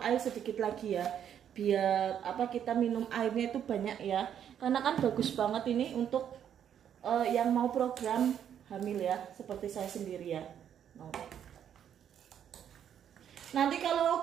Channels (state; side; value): quieter; left; 9.2 dB